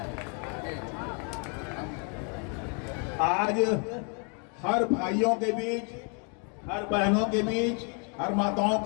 आज हर भाइयों के बीच, हर बहनों के बीच, हर माताओं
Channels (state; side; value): quieter; right; 38.9 dB